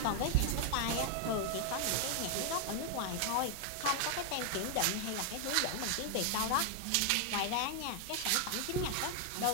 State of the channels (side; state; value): both; different; correlation 0.00